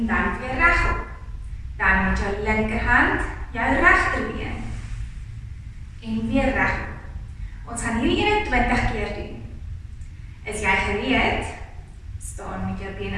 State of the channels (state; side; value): identical; both; correlation 1.00